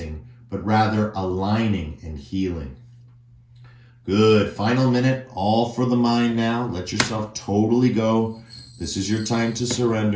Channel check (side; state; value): both; identical; correlation 1.00